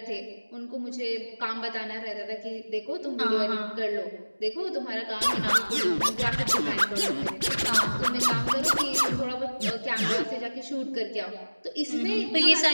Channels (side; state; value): both; inverted; correlation -1.00